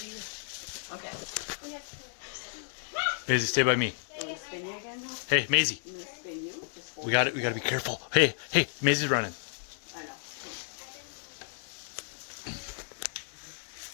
you. Okay. Maisie, stay by me. I'm gonna spin you again now. Hey, Maisie. I'm gonna spin you. Just hold We gotta be careful. Hey, Maisie's running. I know.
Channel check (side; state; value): right; silent; digital silence